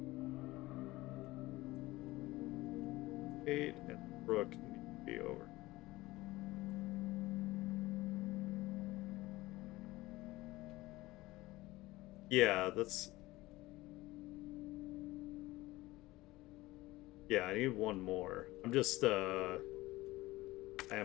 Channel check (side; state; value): right; quieter; 19.0 dB